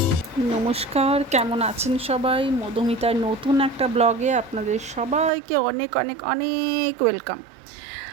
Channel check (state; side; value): drops out; left; at 5.3 s